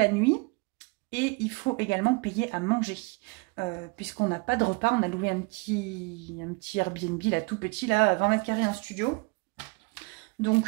nuit. Et il faut également payer à manger, puisqu'on n'a pas de repas. On a loué un petit Airbnb, là, tout petit, là, 20 mètres carrés, un studio.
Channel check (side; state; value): left; quieter; 29.3 dB